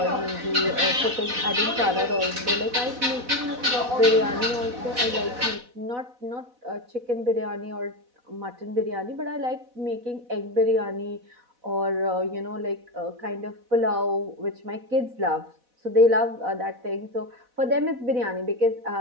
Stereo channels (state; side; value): late; left; 4.1 ms